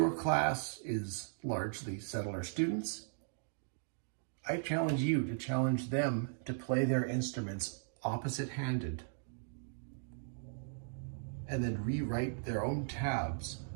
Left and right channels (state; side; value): silent; left; digital silence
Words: class is largely settler students, I challenge you to challenge them to play their instruments opposite-handed and then rewrite their own tabs